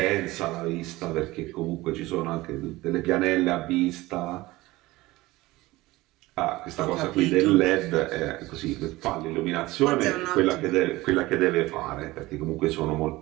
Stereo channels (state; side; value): quieter; left; 19.3 dB